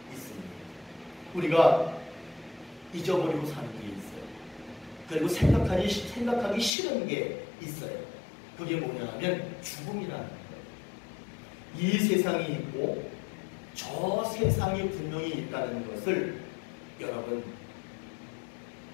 있습니다. 우리가 잊어버리고 사는 게 있어요. 그리고 생각하기 싫은 게 있어요. 그게 뭐냐 하면 죽음이라는 거예요. 이 세상이 있고 저 세상이 분명히 있다는 것을 여러분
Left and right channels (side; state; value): right; drops out; at 6.7 s